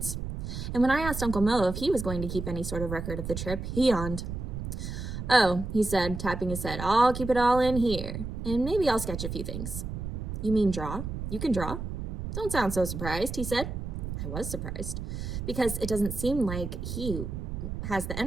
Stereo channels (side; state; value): right; noise; rumble, 5 dB below the sound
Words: And when I asked Uncle Mo if he was going to keep any sort of record of the trip, he yawned. "Oh," he said, tapping his head, "I'll keep it all in here, and maybe I'll sketch a few things." "You mean draw? You can draw?" "Don't sound so surprised," he said. I was surprised, because it doesn't seem like he has the